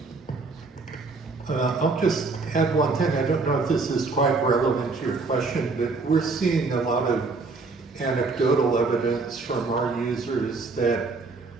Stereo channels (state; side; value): quieter; left; 4.0 dB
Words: I'll just add one thing. I don't know if this is quite relevant to your question, but we're seeing a lot of anecdotal evidence from our users that